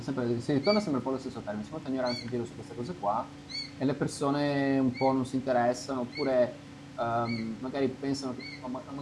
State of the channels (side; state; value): both; identical; correlation 1.00